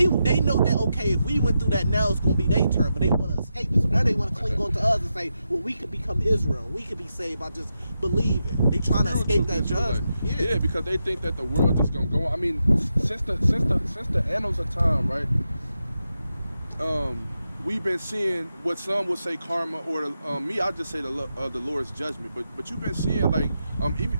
know that, okay, if we went through that, now it's gonna be their turn. But they want to escape it. So now they want to cling on to us and say, well, we could become Israel. We could be saved by just believing. They trying to escape that judgment. Yeah, because they think that the world just gonna go on. I mean, since the annals of time, right? We've been seeing what some would say karma, or me, I'll just say the Lord's judgment. But you've been seeing like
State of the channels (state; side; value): inverted; both; correlation -0.87